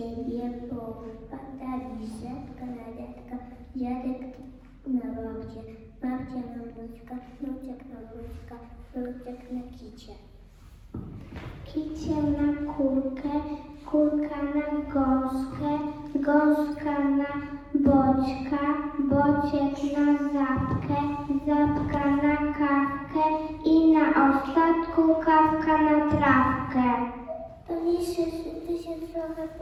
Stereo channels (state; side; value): identical; both; correlation 1.00